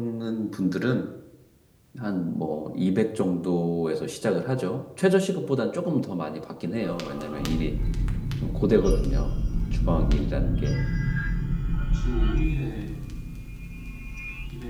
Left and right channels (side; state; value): both; identical; correlation 1.00